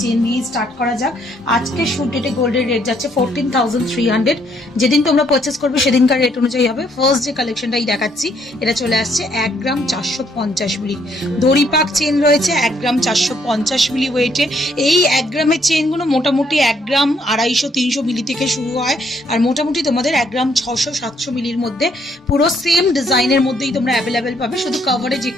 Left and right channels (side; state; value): both; normal; correlation 0.70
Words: চেন নিয়ে স্টার্ট করা যাক। আজকে শুট ডেটে গোল্ডের রেট যাচ্ছে 14,300। যেদিন তোমরা পারচেস করবে সেদিনকার রেট অনুযায়ী হবে। ফার্স্ট যে কালেকশনটাই দেখাচ্ছি এটা চলে আসছে 1 গ্রাম 450 মিলি দড়িপাক চেন রয়েছে। 1 গ্রাম 450 মিলি ওয়েটে এই 1 গ্রামের চেনগুলো মোটামুটি 1 গ্রাম 250-300 মিলি থেকে শুরু হয় আর মোটামুটি তোমাদের 1 গ্রাম 600-700 মিলির মধ্যে পুরো সেম ডিজাইনের মধ্যেই তোমরা অ্যাভেলেবেল পাবে। শুধু কভারেজ